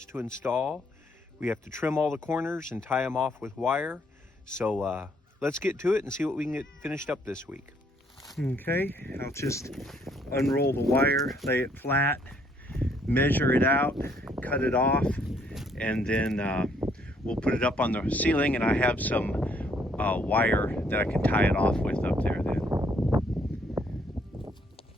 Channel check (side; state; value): both; normal; correlation 0.68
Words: to install. We have to trim all the corners and tie them off with wire. So let's get to it and see what we can get finished up this week. Okay, I'll just unroll the wire, lay it flat, measure it out, cut it off, and then we'll put it up on the ceiling, and I have some wire that I can tie it off with up there then.